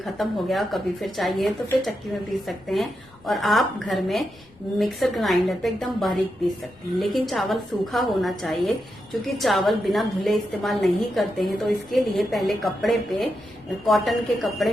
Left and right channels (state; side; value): noise; left; rumble, 29 dB below the sound